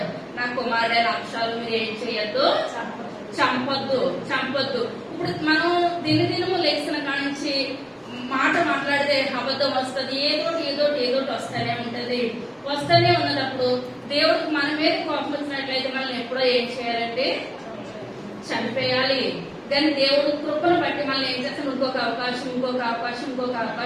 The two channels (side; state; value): both; identical; correlation 1.00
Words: నా కుమారుడైన అక్షరాలు మీరు ఏం చేయొద్దు, చంపొద్దు. ఇప్పుడు మనం దినదినము లేచిన కానించి మాట మాట్లాడితే అబద్ధం వస్తుంది, ఏదోటి వస్తూనే ఉంటది. వస్తూనే ఉన్నప్పుడు దేవుడికి మన మీద కోపం వచ్చినట్లయితే మనం ఎప్పుడో ఏం చేయాలంటే చంపేయాలి. కానీ దేవుడు కృపను బట్టి మనల్ని ఏం చేస్తాం, ఇంకొక అవకాశం.